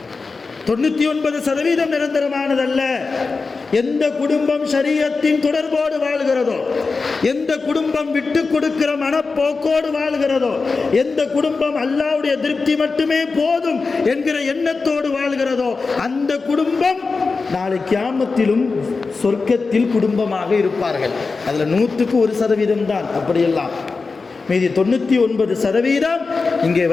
99% நிரந்தரமானதல்ல. எந்த குடும்பம் ஷரியத்தின் தொடர்போடு வாழ்கிறதோ, எந்த குடும்பம் விட்டு கொடுக்கிற மனப்போக்கோடு வாழ்கிறதோ, எந்த குடும்பம் அல்லாஹ்வுடைய திருப்தி மட்டுமே போதும் என்கிற எண்ணத்தோடு வாழ்கிறதோ, அந்த குடும்பம் நாளை கியாமத்திலும் சொர்க்கத்தில் குடும்பமாக இருப்பார்கள். அதுல 100% தான் அப்படியெல்லாம். மீதி 99% இங்கே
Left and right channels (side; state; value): right; quieter; 4.3 dB